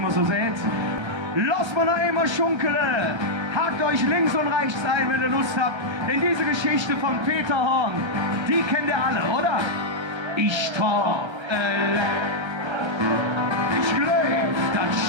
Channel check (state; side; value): late; left; 1.3 ms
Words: so sieht. Los mal noch einmal schunkele, hakt euch links und rechts ein, wenn ihr Lust habt, denn diese Geschichte von Peter Horn, die kennt ihr alle, oder? Ich traf, ich glaub, das